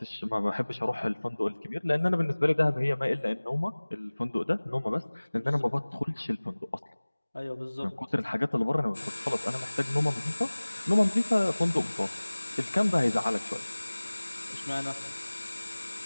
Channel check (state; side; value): inverted; both; correlation -1.00